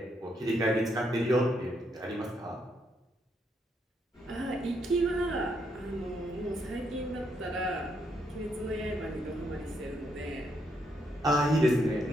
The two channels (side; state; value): both; normal; correlation 0.76